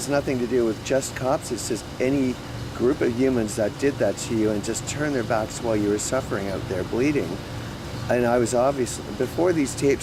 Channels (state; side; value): identical; both; correlation 1.00